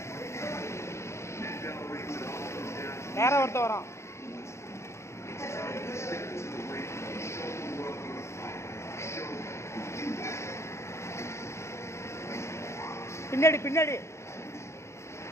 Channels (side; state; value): right; late; 0.13 ms